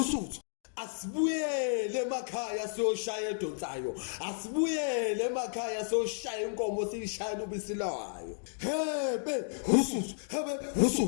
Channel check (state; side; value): silent; right; digital silence